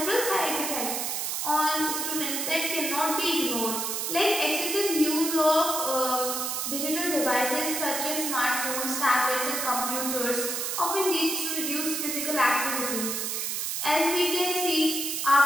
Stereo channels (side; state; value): right; noise; hiss, 1 dB below the sound